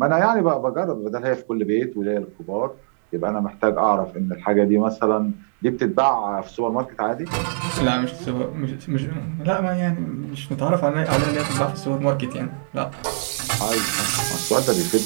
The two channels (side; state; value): left; silent; digital silence